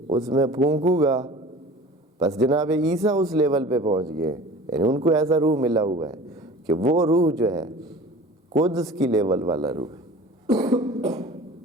اس میں پھونکوں گا۔ بس جناب عیسیٰ اس لیول پہ پہنچ گئے، یعنی ان کو ایسا روح ملا ہوا ہے کہ وہ روح جو ہے قدس کی لیول والا روح ہے۔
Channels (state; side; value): normal; both; correlation 0.41